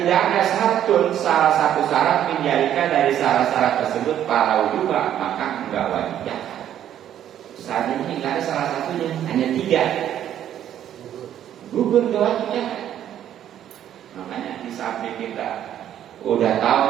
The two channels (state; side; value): quieter; left; 10.7 dB